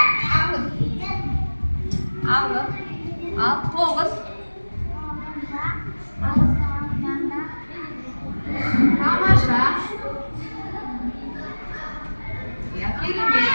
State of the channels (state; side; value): inverted; both; correlation -1.00